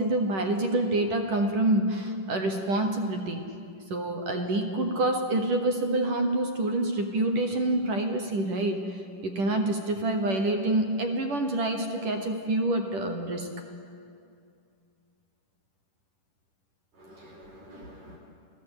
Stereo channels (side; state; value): left; late; 10 ms